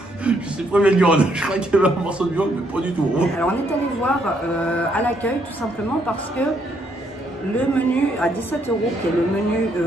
C'est pas de viande. Je crois qu'il y avait un morceau de viande, mais pas du tout. Alors on est allé voir à l'accueil tout simplement parce que le menu à 17 €, qui est le menu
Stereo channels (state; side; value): normal; both; correlation 0.72